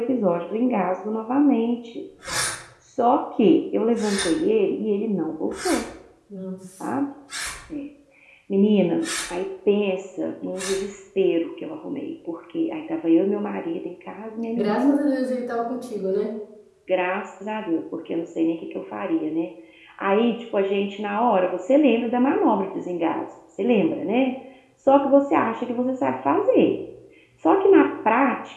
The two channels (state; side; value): identical; both; correlation 1.00